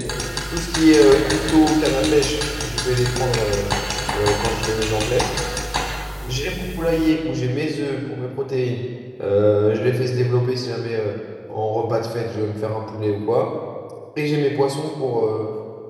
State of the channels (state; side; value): identical; both; correlation 1.00